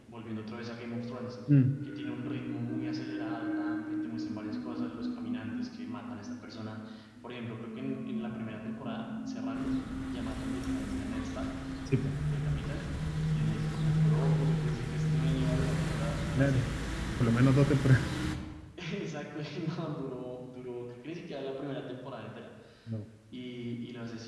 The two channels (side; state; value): both; identical; correlation 1.00